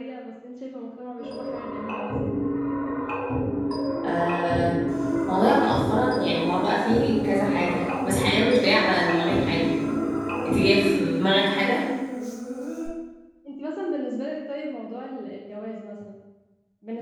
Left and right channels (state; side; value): identical; both; correlation 1.00